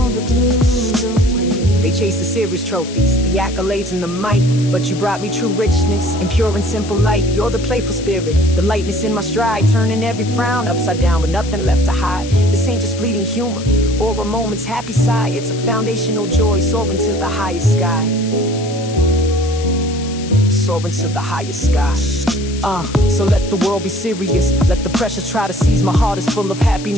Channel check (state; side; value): noise; left; hiss, 14 dB below the sound